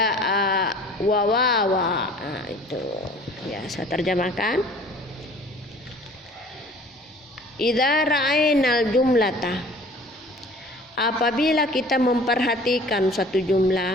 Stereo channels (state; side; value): normal; both; correlation 0.49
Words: wa wawa. Itu ya, saya terjemahkan. Idza ra'ainal jumlata, apabila kita memperhatikan suatu